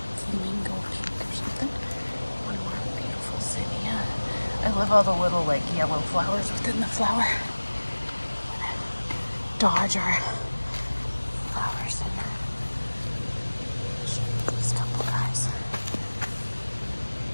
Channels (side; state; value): both; inverted; correlation -1.00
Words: Flamingo pink or something. One more beautiful zinnia. I love all the little like yellow flowers within the flower. Dodge our flowers and these couple guys.